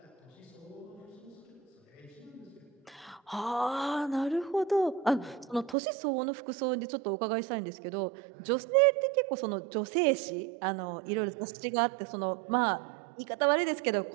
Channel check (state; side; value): drops out; left; at 5.8 s